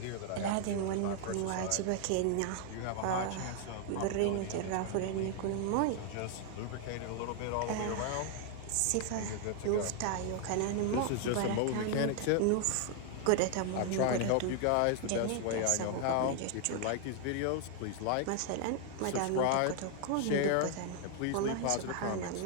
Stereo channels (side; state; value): both; different; correlation 0.00